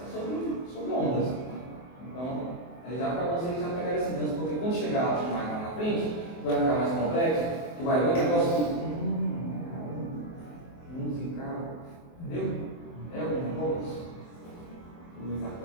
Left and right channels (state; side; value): late; right; 23 ms